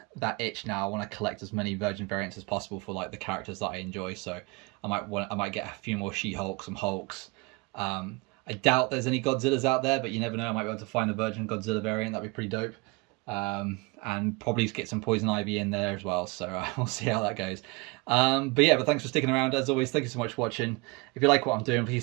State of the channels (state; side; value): quieter; left; 26.3 dB